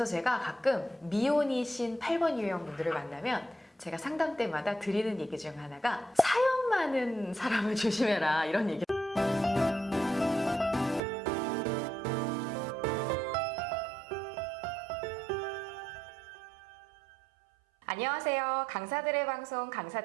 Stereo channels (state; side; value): drops out; left; at 11.0 s